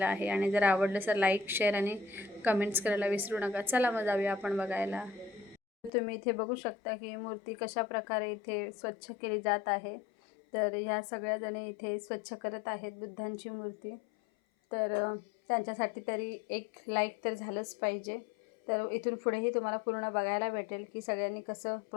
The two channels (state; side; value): drops out; right; at 5.9 s